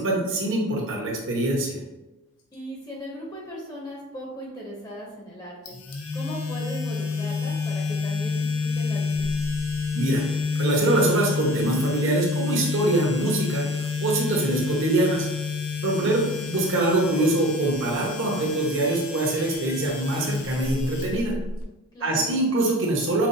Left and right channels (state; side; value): normal; both; correlation 0.42